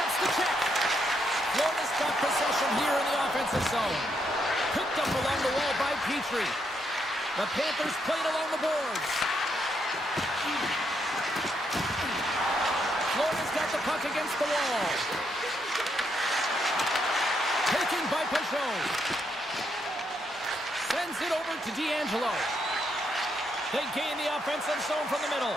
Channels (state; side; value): noise; right; hum, 29 dB below the sound